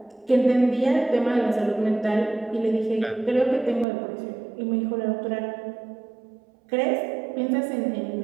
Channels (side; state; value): left; drops out; at 3.9 s